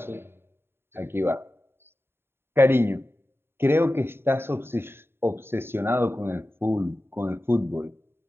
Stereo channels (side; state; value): left; late; 0.11 ms